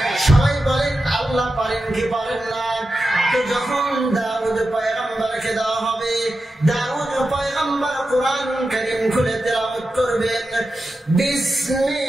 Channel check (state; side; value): normal; both; correlation 0.91